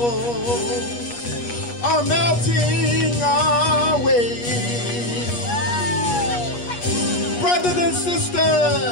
are melting away. Brothers and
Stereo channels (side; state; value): right; late; 8.3 ms